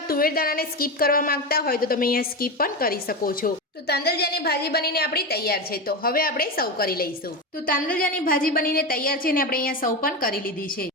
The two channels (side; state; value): both; normal; correlation 0.18